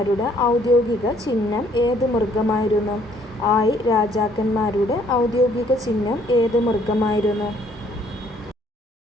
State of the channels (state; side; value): normal; both; correlation 0.63